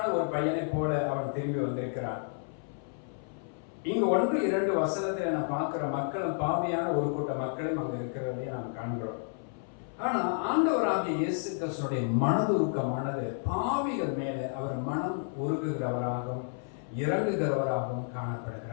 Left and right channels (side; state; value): right; silent; 57 dB below the other